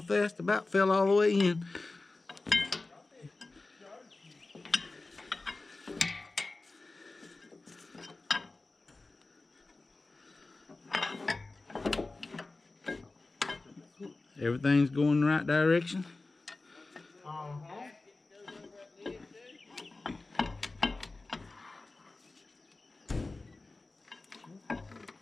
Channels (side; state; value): right; quieter; 3.3 dB